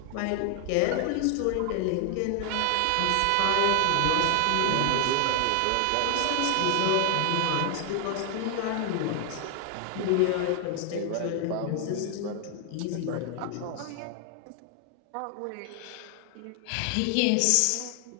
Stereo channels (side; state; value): both; different; correlation 0.00